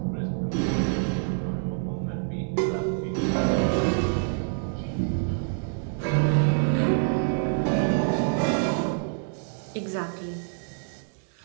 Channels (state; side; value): silent; left; digital silence